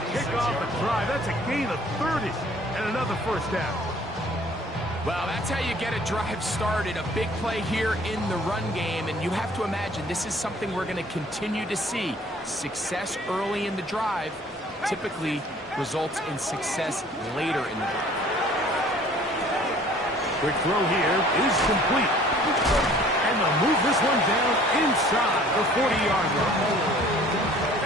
kick off a drive. That's a gain of 30 and another first down. Well, that's how you get a drive started. A big play here in the run game, and you have to imagine this is something we're going to continue to see. Success early in the drive typically results in success later in the drive. Quick throw here is complete. And they'll move this one down inside the 40-yard line.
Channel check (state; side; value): normal; both; correlation 0.53